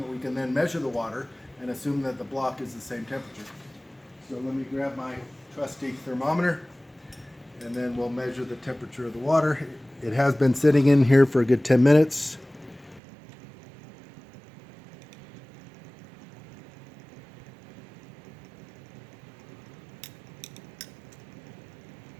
we can then measure the water and assume that the block is the same temperature. So let me grab my trusty thermometer, and then we'll measure the temperature of the water. It has been sitting in here for a good 10 minutes.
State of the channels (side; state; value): left; drops out; at 13.0 s